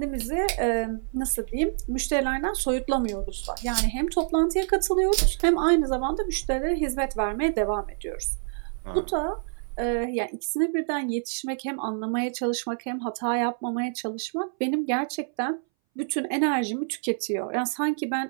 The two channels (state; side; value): silent; left; 60 dB below the other